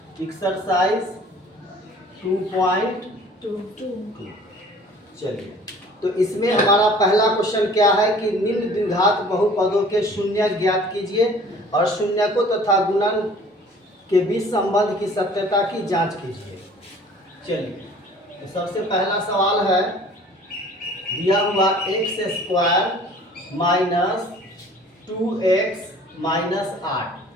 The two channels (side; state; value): both; normal; correlation 0.50